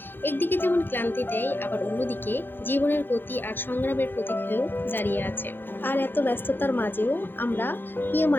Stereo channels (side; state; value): right; late; 0.099 ms